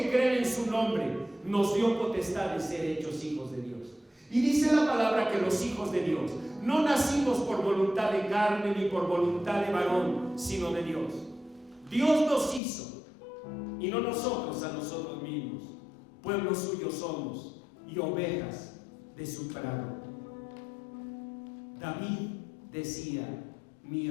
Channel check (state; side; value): drops out; right; at 12.6 s